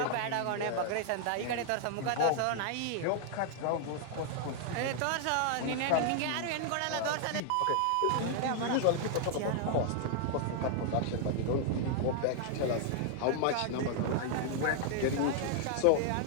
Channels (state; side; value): different; both; correlation 0.00